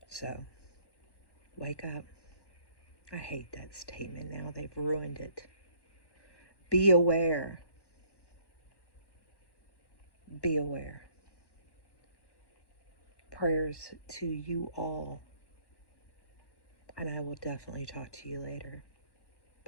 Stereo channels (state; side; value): late; right; 1.1 ms